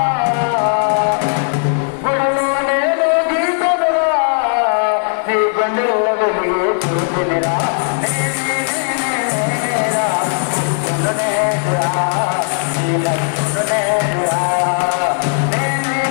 గుడిలో నేను గీతలురా నీ గుండెల్లో వెలిగి చూసినిరా నేనేరా ఉప్పును నేనురా నీ లక్కును నేనురా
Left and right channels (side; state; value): right; silent; digital silence